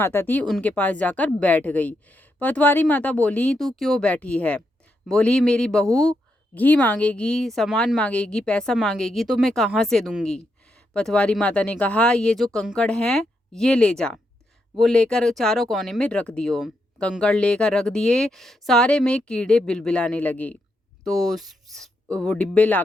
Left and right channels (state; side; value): normal; both; correlation 0.82